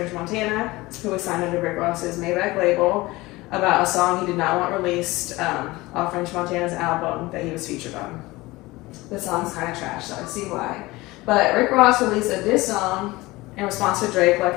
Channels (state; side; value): quieter; right; 20.6 dB